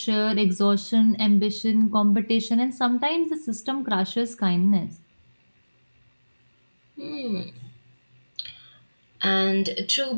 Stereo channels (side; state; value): both; inverted; correlation -1.00